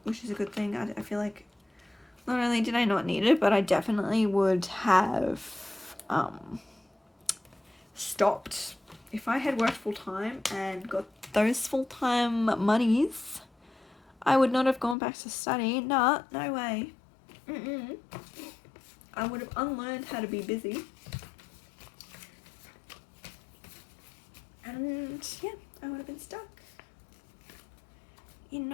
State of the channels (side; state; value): right; drops out; at 15.0 s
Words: which is a good thing. I feel like not only did I not need it, but I definitely would have stopped. If I had worked full-time and got those full-time monies, I would not have gone back to study. Nah, no way. I would have unlearned how to be busy. And yeah, I would have been stuck in